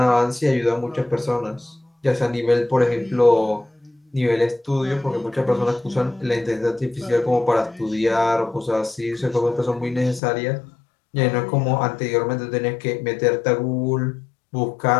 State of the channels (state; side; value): drops out; right; at 10.2 s